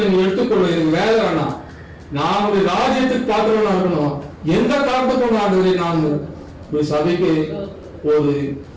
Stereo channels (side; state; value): both; identical; correlation 1.00